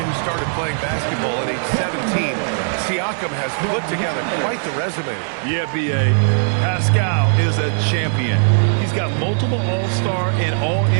who started playing basketball at age 17, Siakam has put together quite the resume. Yeah, B.A. Pascal is a champion. He's got multiple All-Star and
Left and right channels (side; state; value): left; silent; 66 dB below the other